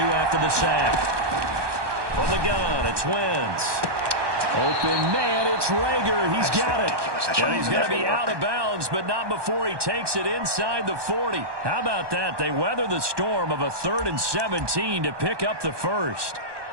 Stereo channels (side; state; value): left; late; 1.2 ms